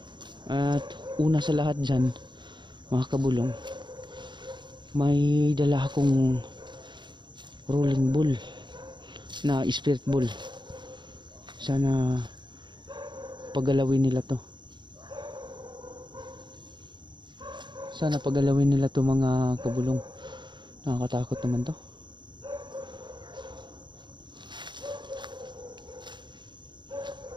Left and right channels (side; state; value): left; late; 0.22 ms